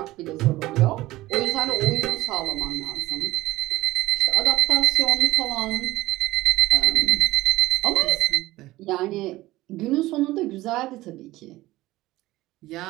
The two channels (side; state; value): left; quieter; 17.7 dB